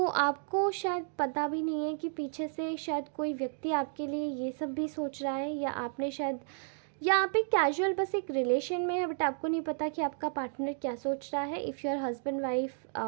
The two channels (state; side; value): silent; left; digital silence